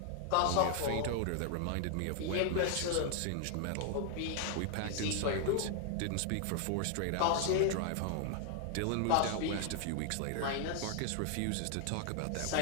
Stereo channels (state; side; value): different; both; correlation -0.01